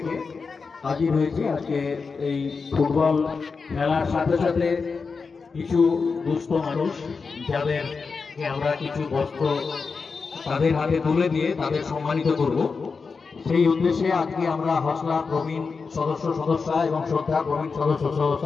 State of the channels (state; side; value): quieter; right; 4.9 dB